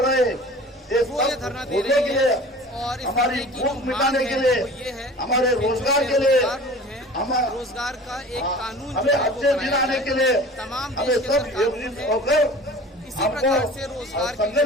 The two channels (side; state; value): both; normal; correlation 0.41